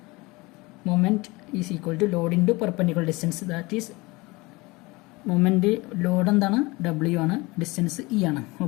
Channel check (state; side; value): quieter; right; 23.4 dB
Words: Moment is equal to load into perpendicular distance. That is moment load എന്താണ്? W ആണ്, ഡിസ്റ്റൻസ് E ആണ്.